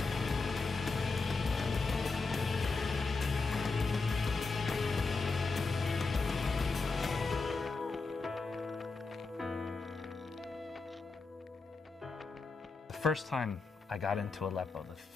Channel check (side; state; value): right; quieter; 4.0 dB